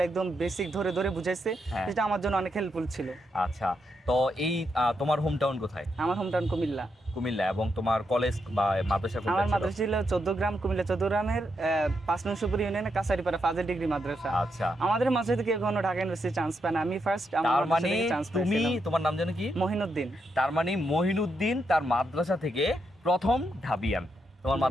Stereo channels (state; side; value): normal; both; correlation 0.81